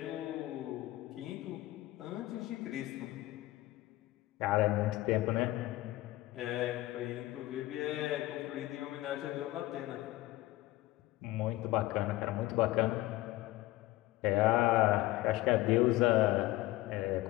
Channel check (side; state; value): right; quieter; 17.5 dB